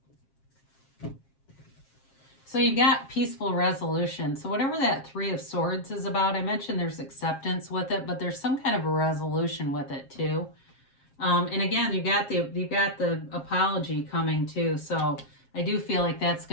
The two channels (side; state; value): right; late; 7.4 ms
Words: So you've got peaceful resolution. So whatever that Three of Swords is about, I mentioned there's acceptance with it, but there's some kind of a resolution with it too. And again, you've got the apology coming too. So I do feel like that's